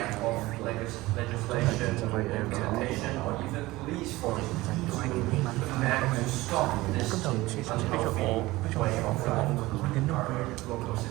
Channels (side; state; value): left; quieter; 19.3 dB